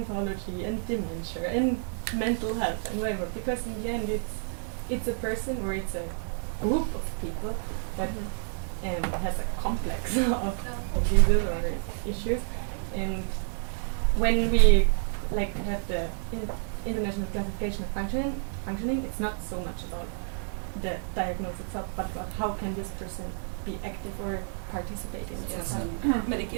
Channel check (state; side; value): silent; left; 58 dB below the other